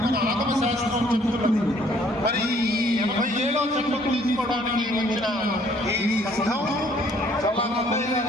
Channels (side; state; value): both; normal; correlation 0.61